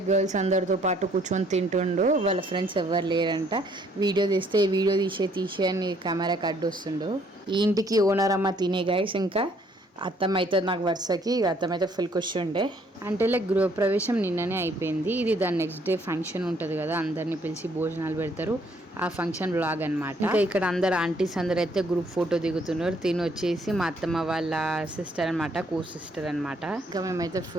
గర్ల్స్ అందరితో పాటు కూర్చొని తింటుండు. వాళ్ళ ఫ్రెండ్స్ ఎవరు లేరంట. వీడియో తీస్తే వీడియో తీసే అని కెమెరాకి అడ్డు వస్తుండు. ఈ ఇంటికి ఓనర్ అమ్మ తినే గైస్. ఇంకా అత్తమ్మ అయితే నాకు వరుసకి అత్తమ్మ అయితే ఫుల్ ఖుషి ఉండే. అంటే లైక్ గృహప్రవేశం నిన్ననే అయిపోయింది. ఇది దాని నెక్స్ట్ డే ఫంక్షన్ ఉంటుంది కదా, అందరిని పిలిచి భోజనాలు పెడతారు. ఆ ఫంక్షన్ వ్లాగ్ అనమాట. ఇంకా ఇక్కడ అందరు ఆంటీస్ అందరు అయితే గ్రూప్ ఫోటో దిగుతున్నారు. తిని వచ్చేసి మా అత్తమ్మ వాళ్ళ సిస్టర్ అనమాట, కో సిస్టర్ అనమాట. ఇంకా మేమైతే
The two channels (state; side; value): normal; both; correlation 0.65